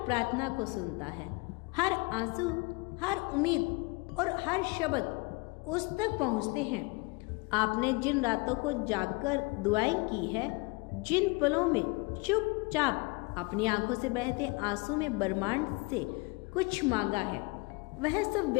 प्रार्थना को सुनता है। हर आंसू, हर उम्मीद और हर शब्द उस तक पहुंचते हैं। आपने जिन रातों को जागकर दुआएं की है, जिन पलों में चुपचाप अपनी आंखों से बहते आंसू में ब्रह्मांड से कुछ मांगा है, वह सब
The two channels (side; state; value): right; quieter; 27.3 dB